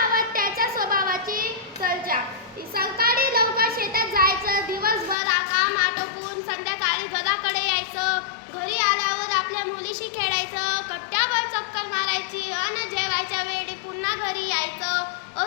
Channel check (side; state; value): right; drops out; at 5.2 s